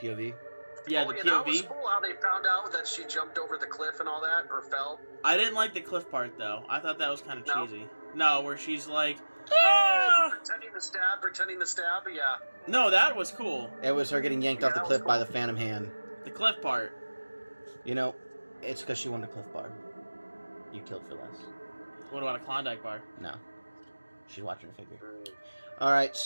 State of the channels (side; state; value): both; inverted; correlation -1.00